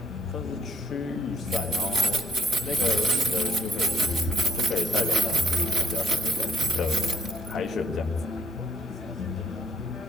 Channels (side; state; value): both; normal; correlation 0.62